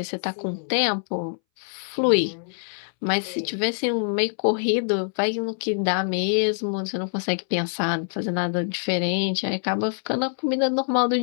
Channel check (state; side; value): silent; right; 62 dB below the other